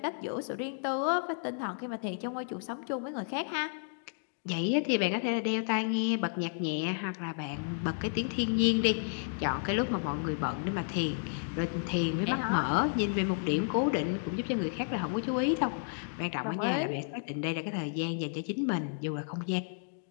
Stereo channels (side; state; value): right; silent; digital silence